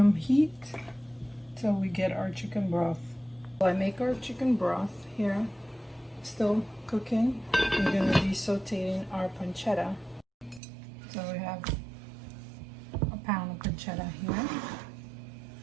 heat till we get our chicken broth. While I make our chicken broth here, still cooking, we're going to be sauteing our pancetta. So we have a pound of pancetta here.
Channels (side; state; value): left; drops out; at 10.6 s